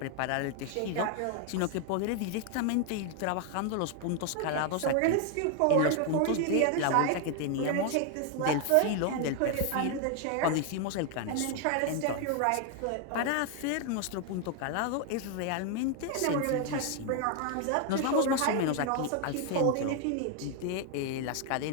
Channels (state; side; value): different; both; correlation 0.00